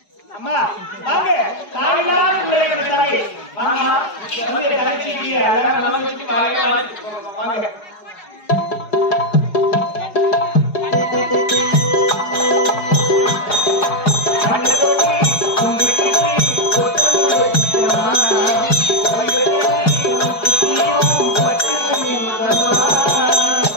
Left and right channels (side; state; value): right; late; 4.9 ms